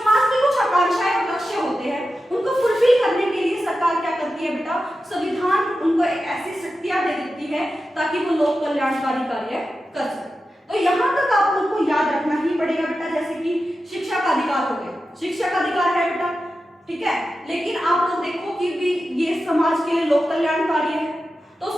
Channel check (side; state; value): both; normal; correlation 0.92